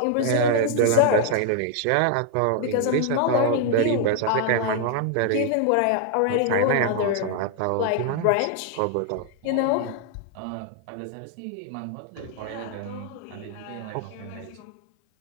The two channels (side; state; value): both; different; correlation 0.00